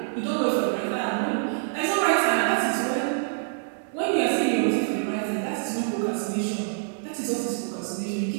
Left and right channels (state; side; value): silent; left; digital silence